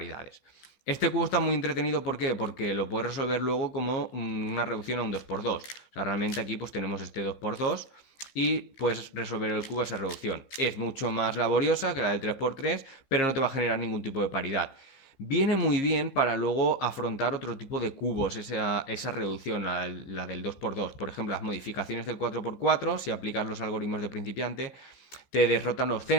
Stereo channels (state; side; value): late; right; 15 ms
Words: Este cubo está muy entretenido, ¿por qué? Porque lo puedes resolver luego como una reducción a un 2x2. O sea, realmente aquí pues tenemos este 2x2 y puedes resolver el cubo a esa reducción. Es mucho más laboriosa que la del 3x3, pero no te va a generar ningún tipo de paridad. Viene muy bien para luego afrontar otro tipo de cubos, esa reducción, la del 2x2. Por ejemplo, las modificaciones del 4x4, si aplicas los algoritmos de principiante, te derrotan los